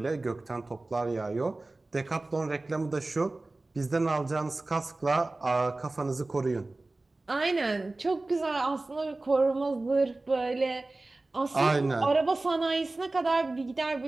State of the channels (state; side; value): quieter; left; 3.0 dB